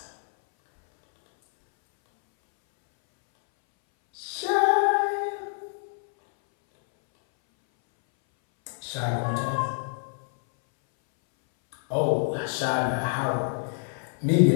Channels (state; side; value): silent; right; 60 dB below the other